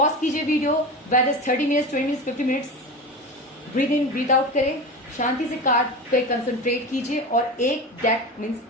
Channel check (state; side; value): normal; both; correlation 0.27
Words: कीजिए video, whether is 30 minutes, 20 minutes, 50 minutes. Breathe in breathe out करें, शांति से कार्ड पे कंसंट्रेट कीजिए और एक डेक मीन्स